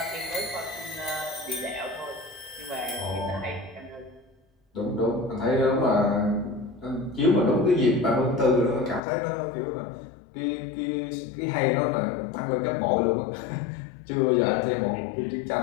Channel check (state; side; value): drops out; right; at 9.0 s